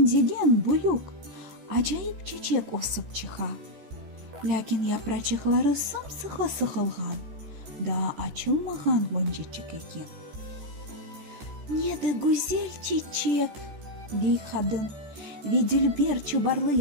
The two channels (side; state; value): left; late; 14 ms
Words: бұйық, ажайып чечек осып чыға. Ләкин япрачықлары сымсығы сықылған, да açılмаған бончечек екен. Неді гүзел чечек, дей қадын, веділбер чубарлы